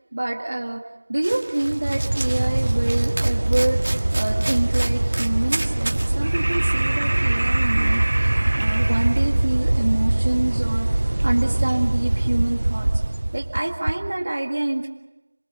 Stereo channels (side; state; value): both; inverted; correlation -1.00